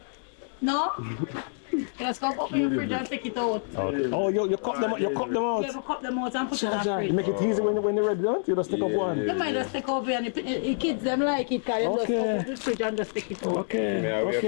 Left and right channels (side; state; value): right; silent; 60 dB below the other